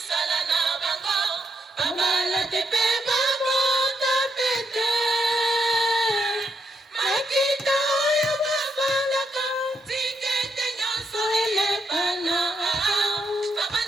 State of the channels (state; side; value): normal; both; correlation 0.78